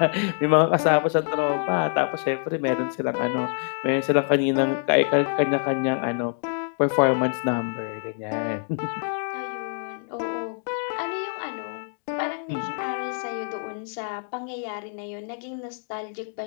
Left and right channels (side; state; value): right; silent; 58 dB below the other